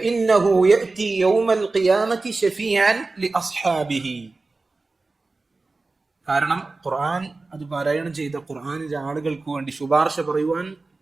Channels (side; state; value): left; quieter; 3.5 dB